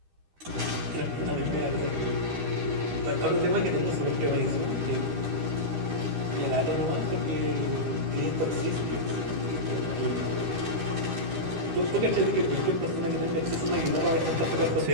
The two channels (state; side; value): late; left; 13 ms